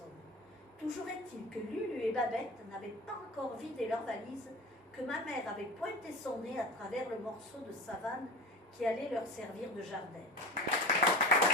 Toujours est-il que Lulu et Babette n'avaient pas encore vidé leur valise, que ma mère avait pointé son nez à travers le morceau de savane qui allait leur servir de jardin.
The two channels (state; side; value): normal; both; correlation 0.30